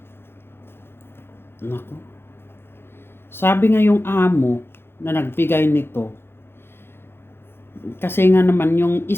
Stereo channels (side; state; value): right; late; 0.11 ms